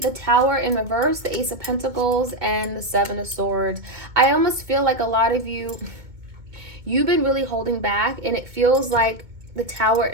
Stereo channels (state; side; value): late; left; 2.2 ms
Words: Tower in reverse, the Ace of Pentacles, and the Seven of Swords. I almost feel like a lot of you, you've been really holding back, and it feels like the Tower